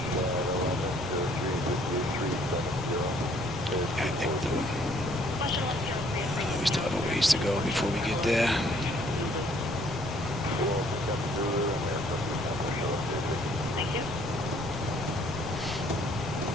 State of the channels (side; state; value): both; normal; correlation 0.62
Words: I think we still have a ways to go before we get there. Thank you.